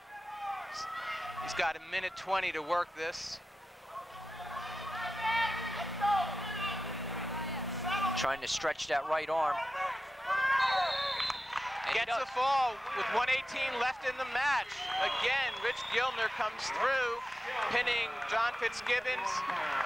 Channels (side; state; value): both; normal; correlation 0.93